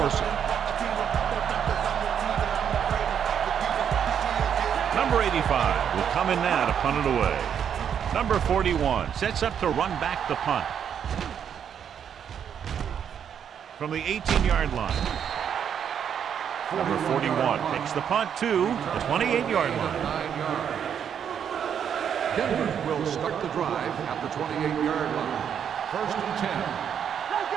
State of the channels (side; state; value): left; quieter; 8.3 dB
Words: it. Number 85 will come in now to punt it away. Number 41 sets up to run back the punt. From the 18-yard line. Number 41 takes the punt to the 28-yard line. Denver will start the drive at the 28-yard line. First and 10. Let's